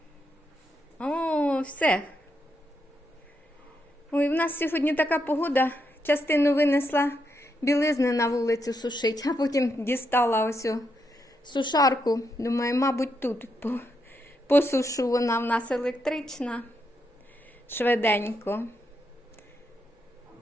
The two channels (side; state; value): both; normal; correlation 0.81